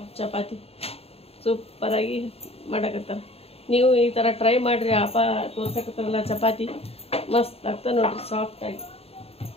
ಚಪಾತಿ. ಸೂಪರ್ ಆಗಿ ಮಾಡಕತ್ತಾರ. ನೀವು ಈ ತರ ಟ್ರೈ ಮಾಡ್ರಿ. ಅಪ್ಪ ತೋರ್ಸಕತ್ತಾರಲ್ಲ ಚಪಾತಿ ಮಸ್ತ್ ಆಗ್ತದ ನೋಡ್ರಿ, ಸಾಫ್ಟ್ ಆಗಿ.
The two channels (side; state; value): right; late; 0.29 ms